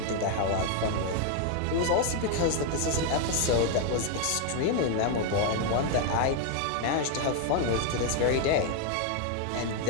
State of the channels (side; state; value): both; different; correlation 0.01